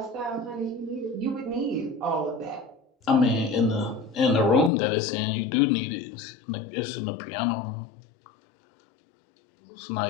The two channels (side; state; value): right; drops out; at 4.7 s